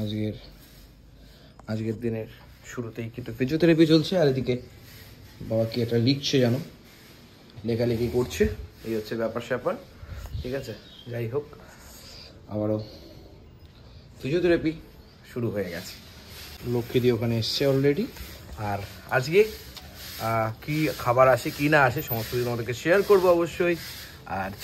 আজকের দিনের শুরুতেই কিন্তু ফিজিওথেরাপি চলছে, আর এদিকে বাবা কি একটা লিখছে জানো, লেখালেখি করছে। এই হচ্ছে ব্যাপার স্যাপার, ঠিক আছে। যাই হোক, আবারও ফিজিওথেরাপি শুরু হয়ে গেছে। লক্ষ্মীদি ওখানে এসছে অলরেডি। আর আজকে কি খাবার আসে কি না আসে সমস্ত কিছু তোমাদেরকে শেয়ার করবো অবশ্যই। আর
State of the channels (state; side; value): identical; both; correlation 1.00